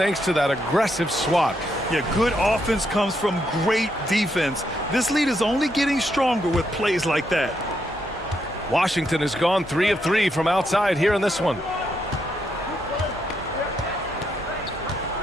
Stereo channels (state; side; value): normal; both; correlation 0.78